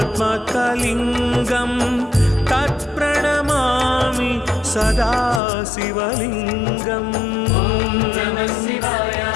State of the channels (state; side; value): drops out; right; at 5.4 s